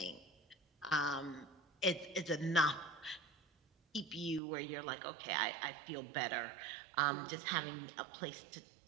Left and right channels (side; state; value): left; drops out; at 4.4 s